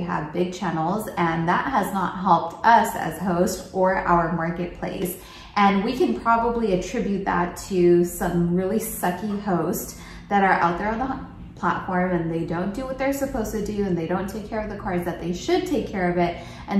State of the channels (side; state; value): both; identical; correlation 1.00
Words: big channels, and that has not helped us as hosts or our marketplace. And we can probably attribute that to some really sucky hosts that are out there on the platform, and they don't do what they're supposed to do, and they don't take care of the cars that they should take care of it,